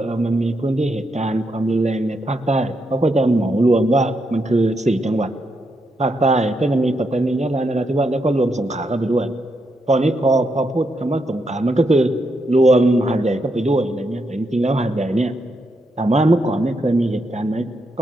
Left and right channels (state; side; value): normal; both; correlation 0.81